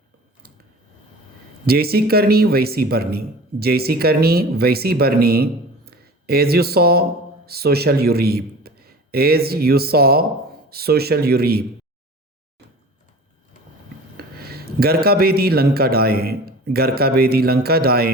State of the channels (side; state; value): both; normal; correlation 0.39